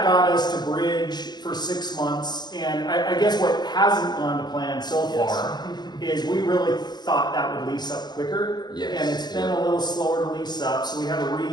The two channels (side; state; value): right; late; 0.20 ms